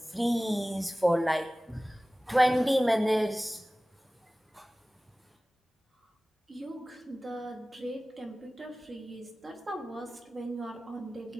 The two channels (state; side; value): normal; both; correlation 0.98